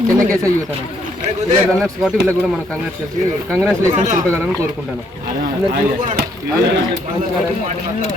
చెన్నకేశ్వర యూత్ అన్న వీళ్ళ రన్నర్స్ కాబట్టి వీళ్ళకి కూడా మనం కంగ్రాచులేషన్ తెలపగలని కోరుకుంటాను అందరికీ.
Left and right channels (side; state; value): both; normal; correlation 0.70